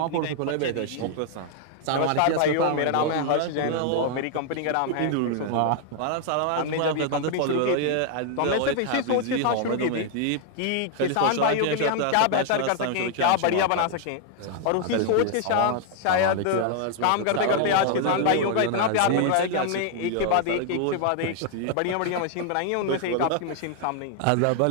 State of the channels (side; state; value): both; different; correlation 0.00